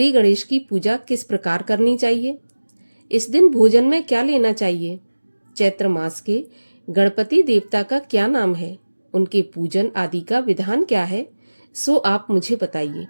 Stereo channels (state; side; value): inverted; both; correlation -1.00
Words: गणेश की पूजा किस प्रकार करनी चाहिए? इस दिन भोजन में क्या लेना चाहिए? चैत्र मास के गणपति देवता का क्या नाम है? उनके पूजन आदि का विधान क्या है? सो आप मुझे बताइए।